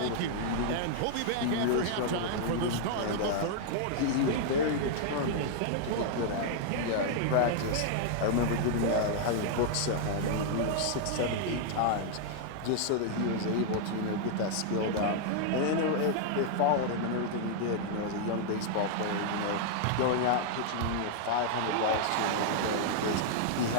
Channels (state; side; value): different; both; correlation 0.00